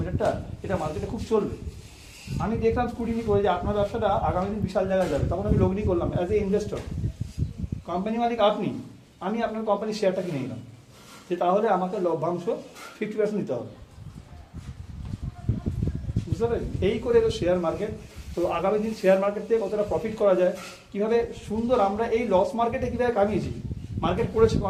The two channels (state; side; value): identical; both; correlation 1.00